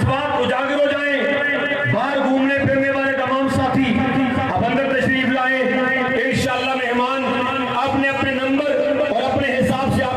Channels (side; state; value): both; identical; correlation 1.00